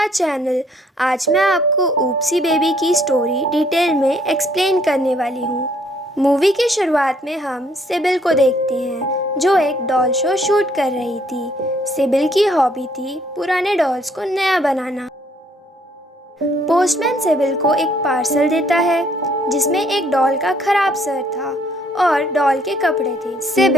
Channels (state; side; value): normal; both; correlation 0.65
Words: channel. आज मैं आपको ऊप्सी बेबी की स्टोरी डिटेल में एक्सप्लेन करने वाली हूँ। मूवी की शुरुआत में हम सिबिल को देखते हैं जो एक डॉल शो शूट कर रही थी। सिबिल की हॉबी थी पुराने डॉल्स को नया बनाना। पोस्टमैन सिबिल को एक पार्सल देता है जिसमें एक डॉल का खराब सर था और डॉल के कपड़े थे।